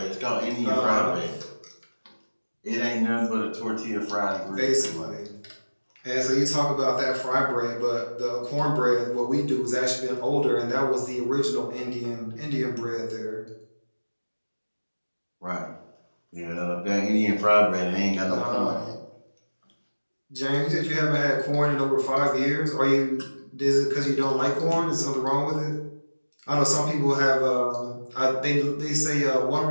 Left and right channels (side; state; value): both; inverted; correlation -1.00